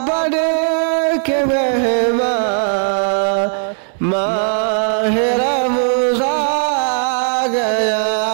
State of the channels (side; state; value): left; silent; 64 dB below the other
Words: बन के मेहमान माह रमज़ान गया।